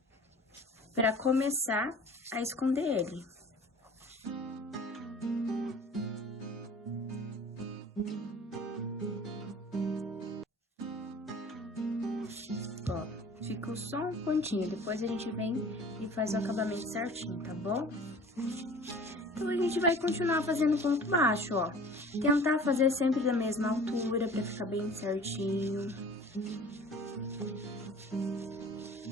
pra começar a esconder ele. Ó, ficou só um pontinho, depois a gente vem e faz o acabamento certinho, tá bom? Então, a gente vai continuar fazendo ponto baixo, ó. Tentar fazer sempre da mesma altura, pra ficar bem certinho.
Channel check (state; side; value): normal; both; correlation 0.45